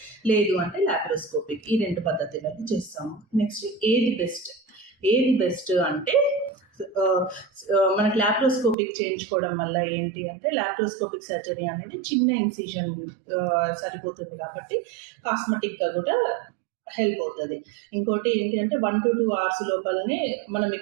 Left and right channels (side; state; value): left; drops out; at 8.8 s